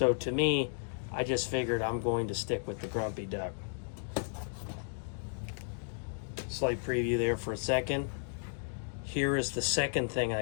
to me, I just figured I'm going to stick with the Grumpy Duck. Slight preview there for a second. Here is the second thing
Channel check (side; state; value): right; silent; digital silence